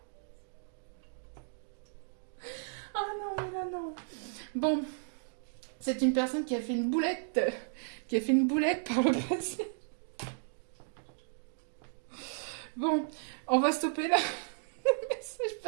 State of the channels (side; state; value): left; silent; digital silence